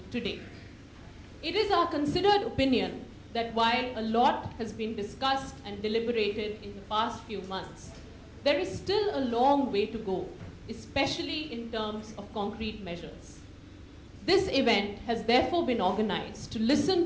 today. It is our considered opinion that while a lot has been discussed and deliberated in the past few months, there is still a long way to go, especially in terms of concrete measures. This event has therefore been organized to listen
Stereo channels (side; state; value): both; identical; correlation 1.00